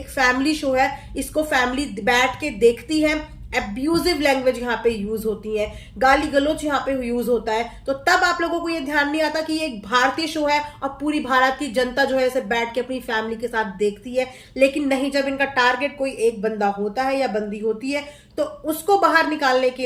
फैमिली शो है, इसको फैमिली बैठ के देखती है। एब्यूजिव लैंग्वेज यहाँ पे यूज होती है, गाली गलौज यहाँ पे यूज होता है। तो तब आप लोगों को ये ध्यान नहीं आता कि ये एक भारतीय शो है और पूरी भारत की जनता जो है इसे बैठ के अपनी फैमिली के साथ देखती है। लेकिन नहीं, जब इनका टारगेट कोई एक बंदा होता है या बंदी होती है तो उसको बाहर निकालने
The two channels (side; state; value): both; identical; correlation 1.00